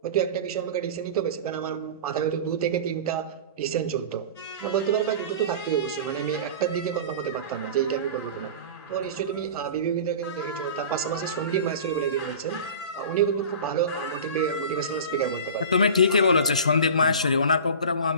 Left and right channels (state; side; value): inverted; both; correlation -0.34